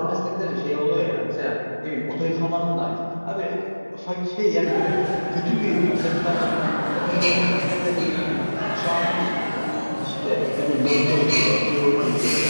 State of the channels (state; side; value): inverted; both; correlation -1.00